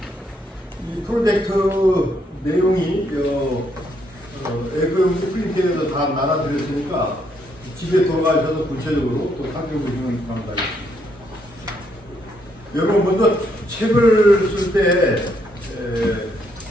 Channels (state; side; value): normal; both; correlation 0.74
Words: 이 프로젝트 내용이 앱을 프린트해서 다 나눠드렸으니까 집에 돌아가셔서 구체적으로 또 살펴보시면 감사하겠습니다. 여러분 먼저 책을 쓸 때